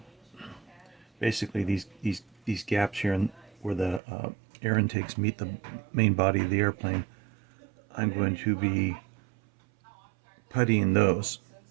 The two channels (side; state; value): left; drops out; at 4.0 s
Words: basically these gaps here where the air intakes meet the main body of the airplane, I'm going to be puttying those.